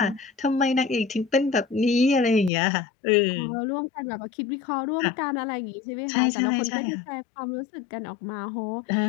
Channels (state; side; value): drops out; right; at 2.5 s